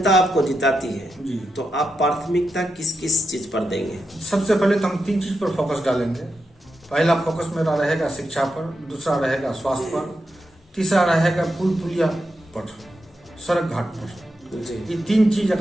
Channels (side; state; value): both; normal; correlation 0.86